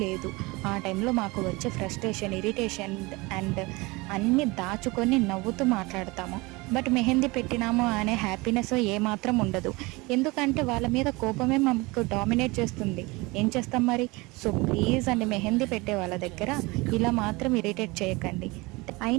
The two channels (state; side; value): quieter; left; 24.0 dB